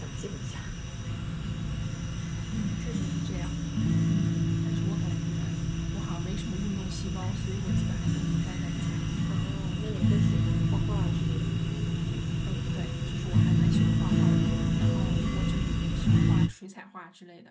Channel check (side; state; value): both; identical; correlation 1.00